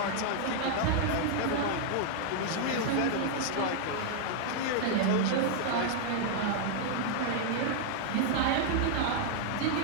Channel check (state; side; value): different; both; correlation -0.01